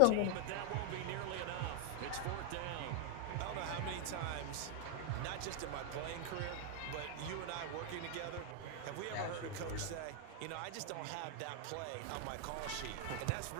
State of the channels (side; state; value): both; different; correlation 0.00